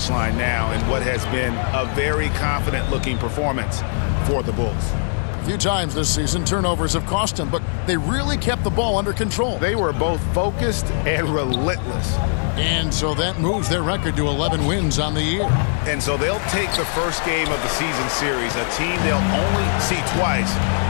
line now in what has been a very confident-looking performance for the Bulls. A few times this season, turnovers have cost him, but they really kept the ball under control. They were both focused and relentless. And so that moves their record to 11 wins on the year. And so they'll take the first game of the season series, a team they'll only see twice.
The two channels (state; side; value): silent; right; 62 dB below the other